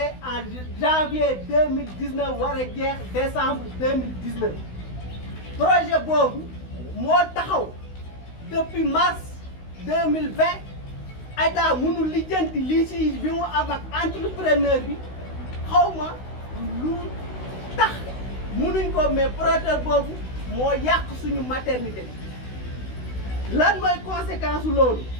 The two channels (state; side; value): late; right; 16 ms